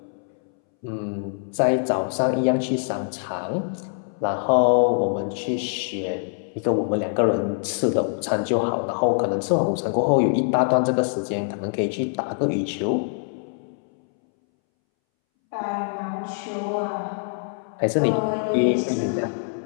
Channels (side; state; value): right; silent; 63 dB below the other